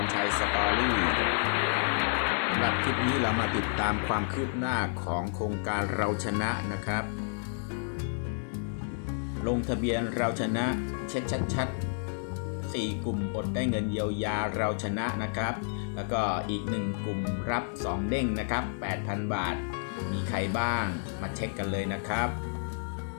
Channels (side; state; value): right; silent; digital silence